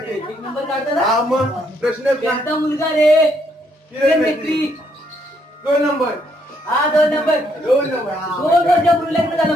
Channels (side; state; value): both; normal; correlation 0.72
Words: एक नंबर काढतात. हा मग प्रश्न त्यांचा मुलगा रे किरण मिस्त्री. 2 नंबर. हा 2 नंबर. 2 नंबर. 2 वर्षापूर्वी लग्न झालं